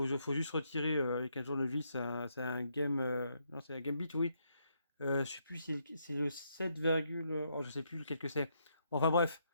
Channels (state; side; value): inverted; both; correlation -0.76